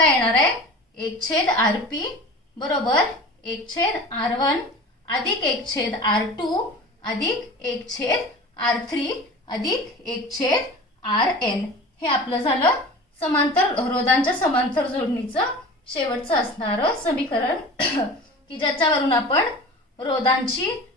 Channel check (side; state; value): both; normal; correlation 0.37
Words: येणार आहे? 1/Rp बरोबर 1/R1 अधिक 1/R2 अधिक 1/R3 अधिक 1/Rn. हे आपलं झालं समांतर रोधांच्या समांतर जोडणीचं शेवटचं असणारं समीकरण की ज्याच्यावरून आपण रोधांची